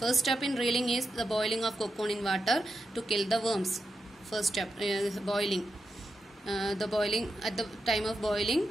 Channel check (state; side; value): normal; both; correlation 0.87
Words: step in reeling is the boiling of cocoon in water to kill the worms. First step, boiling. The boiling, at the time of boiling,